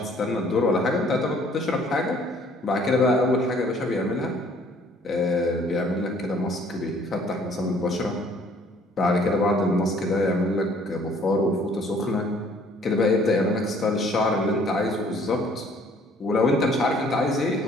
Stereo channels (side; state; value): both; normal; correlation 0.59